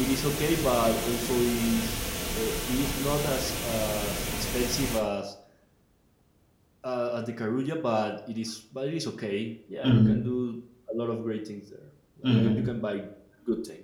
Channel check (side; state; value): both; identical; correlation 1.00